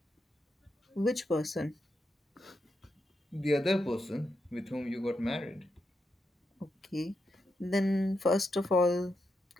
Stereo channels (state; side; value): normal; both; correlation 0.84